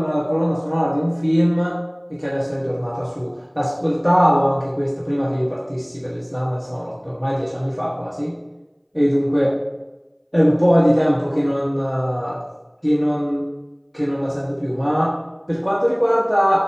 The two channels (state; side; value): identical; both; correlation 1.00